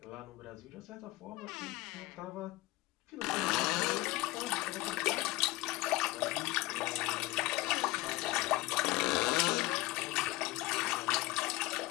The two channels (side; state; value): right; quieter; 19.0 dB